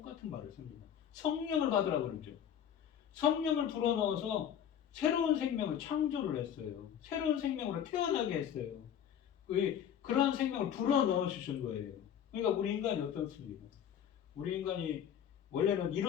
말을 씁니다. 성령을 받으라 그러죠. 성령을 불어넣어서 새로운 생명을 창조를 했어요. 새로운 생명으로 태어나게 했어요. 그러한 생명을 불어넣어 주신 거예요. 그러니까 우리 인간이 어떻습니까? 우리 인간이 원래는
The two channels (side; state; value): right; quieter; 9.2 dB